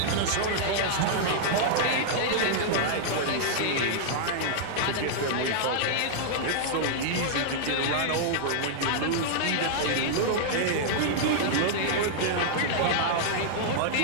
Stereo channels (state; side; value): different; both; correlation -0.01